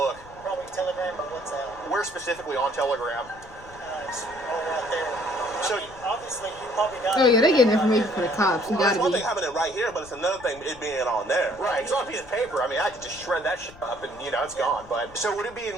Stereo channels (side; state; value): left; noise; rumble, 21 dB below the sound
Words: Probably Telegram or WhatsApp. Where specifically on Telegram? It's all right there. So- I mean, obviously, you probably got. Oh yeah, they getting information for the cops. You Well, gotta it's one be. thing having it right here, but it's another thing it being on there. Right, it's on a piece of paper. I mean, I could just shred that shit up and, it's gone. But so would it be